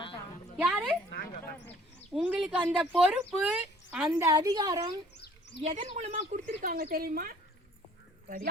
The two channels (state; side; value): normal; both; correlation 0.55